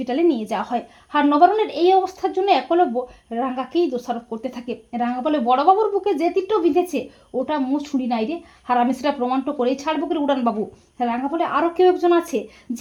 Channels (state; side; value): identical; both; correlation 1.00